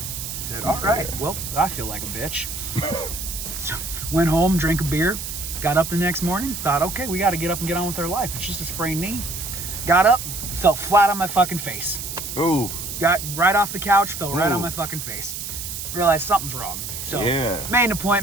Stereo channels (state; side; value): noise; right; hiss, 7 dB below the sound